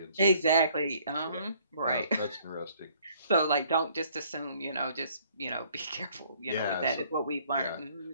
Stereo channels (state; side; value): inverted; both; correlation -0.61